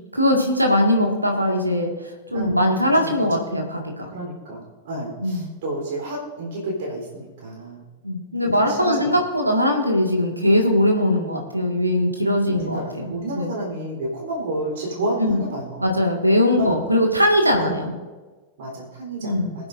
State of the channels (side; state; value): both; inverted; correlation -0.63